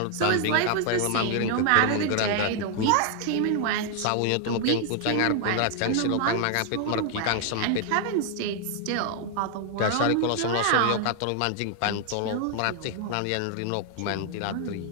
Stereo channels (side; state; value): both; different; correlation 0.00